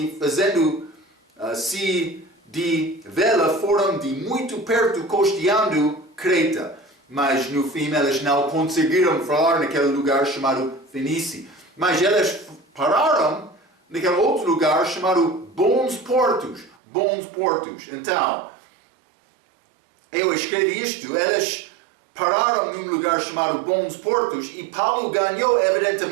fazendo-se de vela, foram de muito perto costeando Creta. Mas no fim eles não conseguiram falar naquele lugar chamado Fenice. Mas eles pararam naquele outro lugar chamado Bons Portos. Então, eu escrevi isto, eles pararam num lugar chamado Bons Portos e Paulo ganhou,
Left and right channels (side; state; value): left; drops out; at 16.8 s